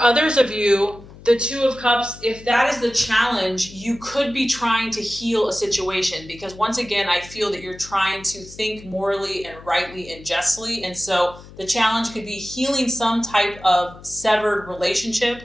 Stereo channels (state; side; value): noise; left; hum, 19 dB below the sound